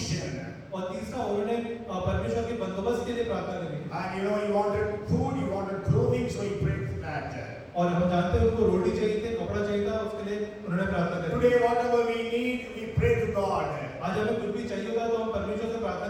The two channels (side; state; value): both; identical; correlation 1.00